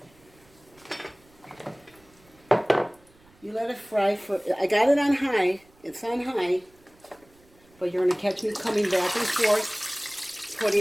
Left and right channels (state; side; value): noise; right; rumble, 30 dB below the sound